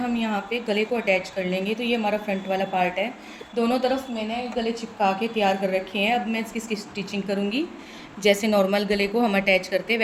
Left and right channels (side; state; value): both; identical; correlation 1.00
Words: यहाँ पे गले को अटैच कर लेंगे। तो ये हमारा फ्रंट वाला पार्ट है, दोनों तरफ मैंने गले चिपका के तैयार कर रखे हैं। अब मैं इसकी स्टिचिंग करूँगी। जैसे नॉर्मल गले को हम अटैच करते हैं